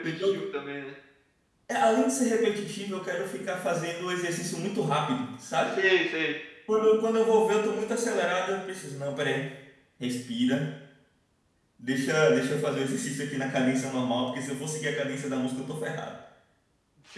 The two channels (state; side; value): identical; both; correlation 1.00